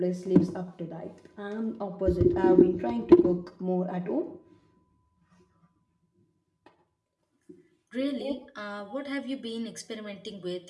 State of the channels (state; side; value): identical; both; correlation 1.00